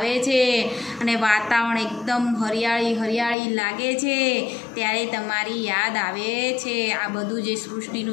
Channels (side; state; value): right; drops out; at 3.4 s